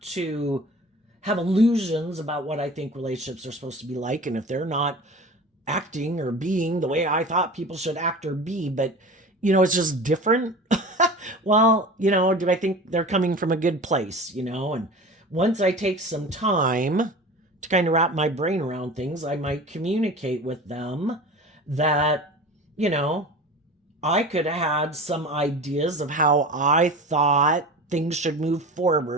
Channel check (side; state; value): both; normal; correlation 0.35